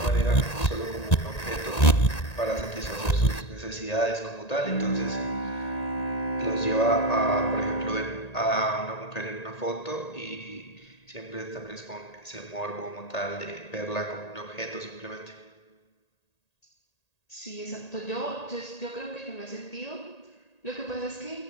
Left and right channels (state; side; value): late; right; 1.8 ms